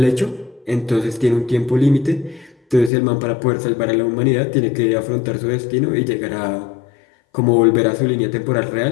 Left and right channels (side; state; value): right; drops out; at 2.9 s